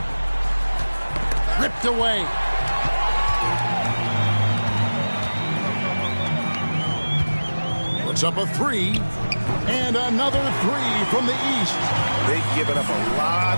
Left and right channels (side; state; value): both; inverted; correlation -1.00